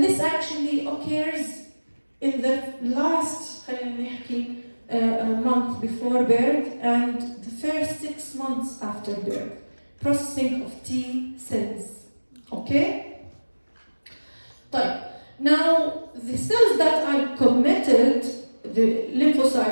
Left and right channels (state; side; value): inverted; both; correlation -1.00